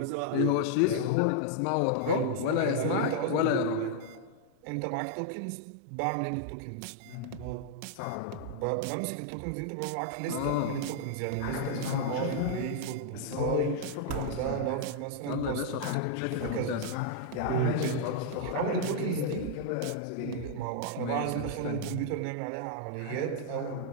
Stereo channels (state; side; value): different; both; correlation -0.01